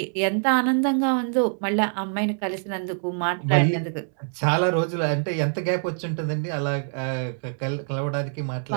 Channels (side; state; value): left; silent; 59 dB below the other